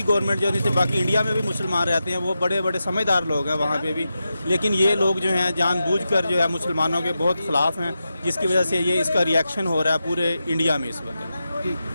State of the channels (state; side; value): inverted; both; correlation -0.90